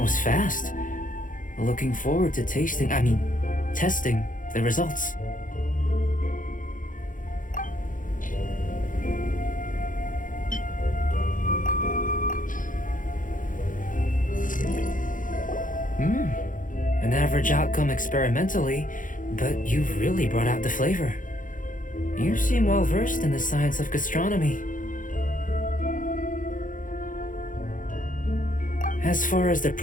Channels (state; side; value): late; right; 0.39 ms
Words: was fast. Looking forward to testing the results. An average outcome experimentally, but you've really brought out the flavor. You seem well versed in the science of gastronomy. As far as the